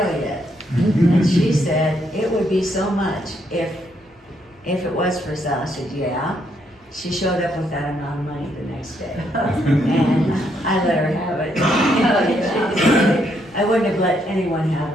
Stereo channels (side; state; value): both; normal; correlation 0.74